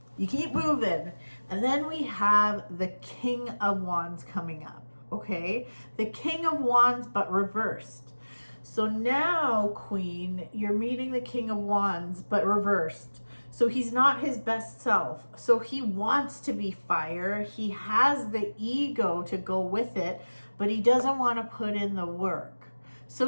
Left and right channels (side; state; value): both; inverted; correlation -1.00